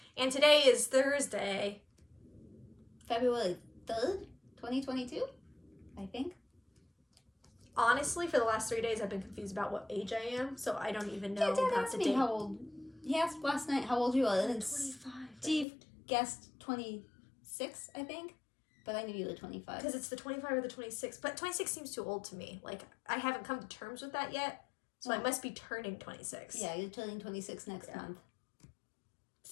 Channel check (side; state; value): right; drops out; at 15.7 s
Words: and today is Thursday. February 3rd, 2022, I think. Honestly, for the last 3 days, I've been confused about what age I am. So I don't even know Dad about asked the me date. how old. He asked last night how old you were. And 25. Steve guessed 26, I think. But I knew you were 25. Because it's the 25 or the 26. But 26 seems too old to me. Like, I haven't come to terms with that yet. So I must be turning 26. Yeah, you're turning 26 next month.